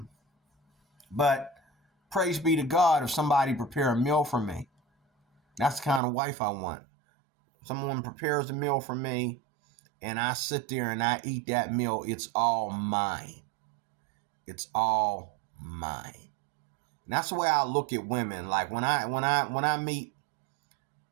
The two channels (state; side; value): drops out; left; at 6.0 s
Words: but praise be to God if somebody prepare a meal for me. That's the kind of wife I want. Someone prepares a meal for me and I sit there and I eat that meal. It's all mine. It's all mine. And that's the way I look at women. Like when I meet